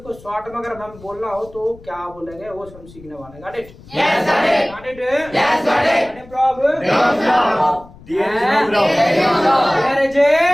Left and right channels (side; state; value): left; noise; rumble, 21 dB below the sound